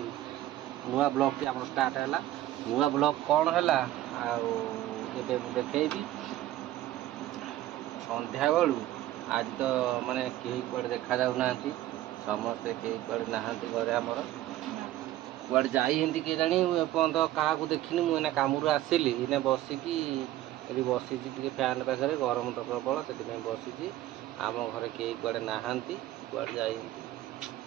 नुआ ब्लॉग टी हमर स्टार्ट हैला नुआ ब्लॉग कौन हैला एबे देखेबी संध्या बेलू आज तो माने केही कुआडे देखा जाउ नांती समस्त केही कुआडे नाहांती घरे हमर कुआडे जाई हिंदी के जानी एपंत का देखिनी मुझे कामरू आसिली इने बसिकी ये बसी फैन पाखे गरम तो प्रबल से बसी आम घर कई कुआडे नाहांती कुआडे जाई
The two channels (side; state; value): left; quieter; 14.4 dB